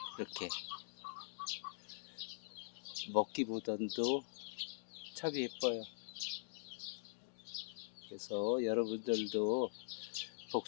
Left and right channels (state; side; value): silent; right; digital silence